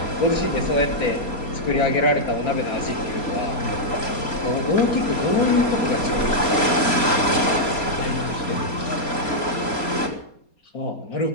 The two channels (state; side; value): late; right; 4.3 ms